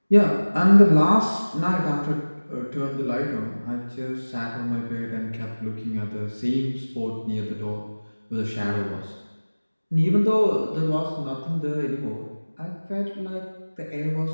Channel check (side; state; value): both; inverted; correlation -1.00